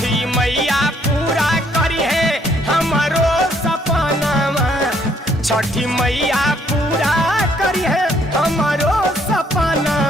मैया पूरा करी है हमारो सपनावा, छठी मैया पूरा करी है हमारो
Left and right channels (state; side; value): normal; both; correlation 0.67